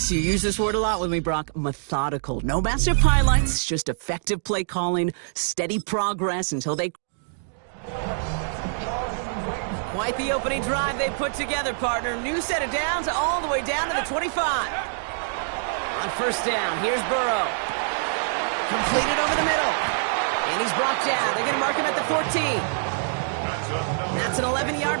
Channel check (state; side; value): silent; left; 62 dB below the other